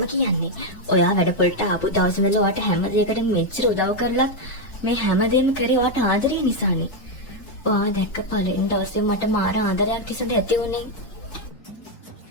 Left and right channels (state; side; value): late; right; 4.6 ms